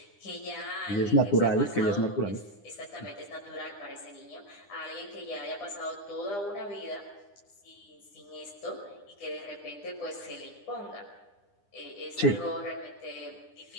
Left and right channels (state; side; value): late; right; 9.9 ms